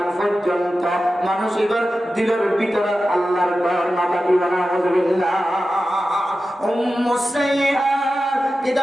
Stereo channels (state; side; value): normal; both; correlation 0.93